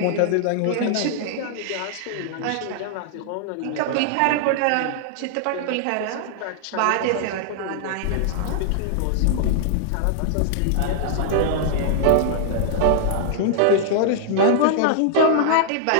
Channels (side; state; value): both; different; correlation -0.01